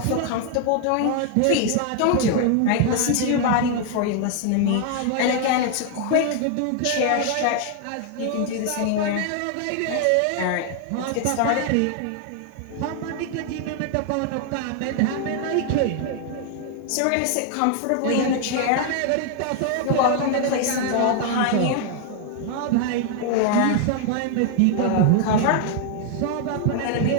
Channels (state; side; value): different; both; correlation 0.00